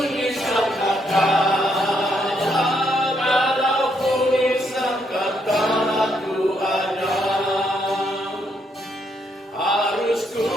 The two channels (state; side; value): normal; both; correlation 0.75